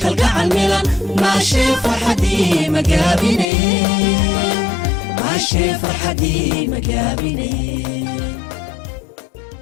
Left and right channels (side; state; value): right; drops out; at 3.5 s